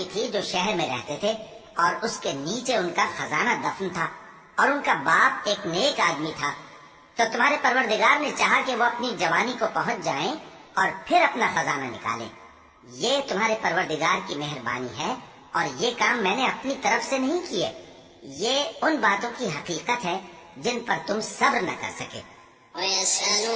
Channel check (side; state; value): both; identical; correlation 1.00